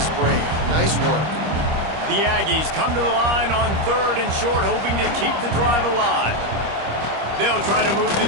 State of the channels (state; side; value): late; left; 25 ms